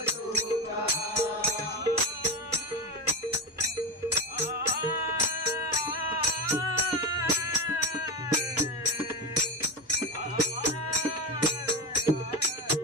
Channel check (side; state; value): both; normal; correlation 0.18